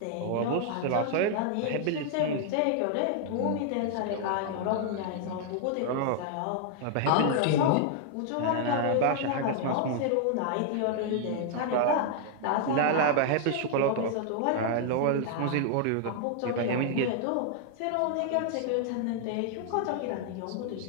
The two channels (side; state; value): both; different; correlation 0.00